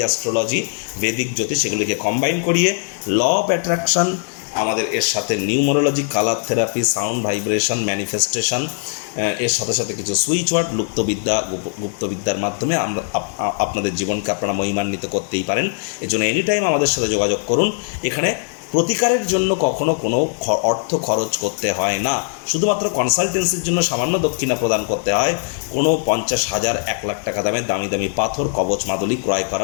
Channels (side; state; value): right; silent; 62 dB below the other